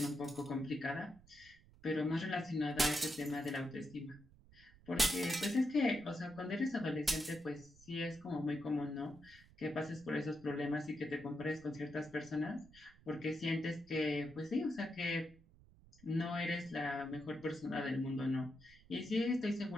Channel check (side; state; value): right; noise; rumble, 24 dB below the sound